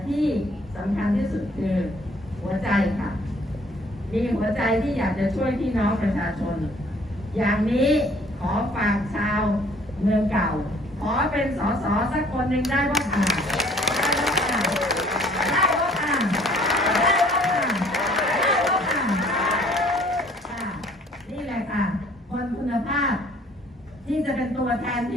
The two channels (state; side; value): normal; both; correlation 0.57